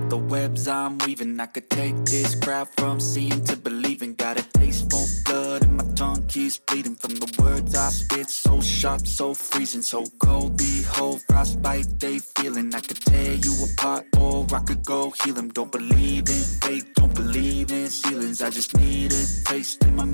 the webs I'm weaving. I could take this crowd from seeing to believing. Got a taste for blood and my tongue keeps bleeding from the words I spit. So sharp, so freezing, so cold. Behold, frostbite they feeling. I could tear you apart or I could go heal them. Don't believe in fate, don't believe in ceilings. I just need a taste and my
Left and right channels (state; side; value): inverted; both; correlation -1.00